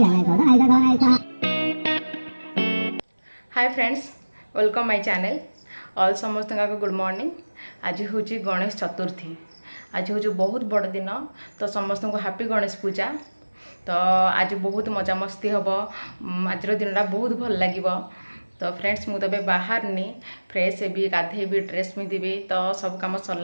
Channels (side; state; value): both; inverted; correlation -1.00